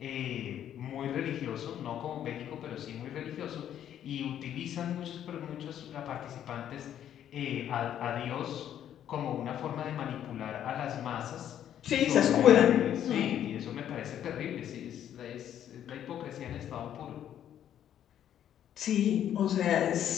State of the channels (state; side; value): quieter; right; 10.4 dB